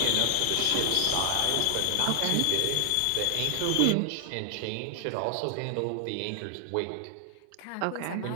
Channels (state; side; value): different; both; correlation 0.00